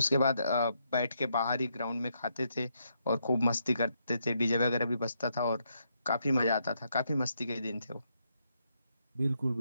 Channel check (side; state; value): both; inverted; correlation -0.78